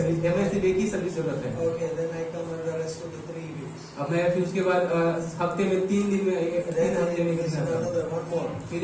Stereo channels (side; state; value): both; identical; correlation 1.00